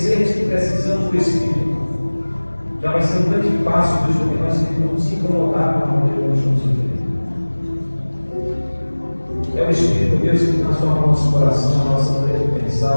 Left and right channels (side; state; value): both; inverted; correlation -1.00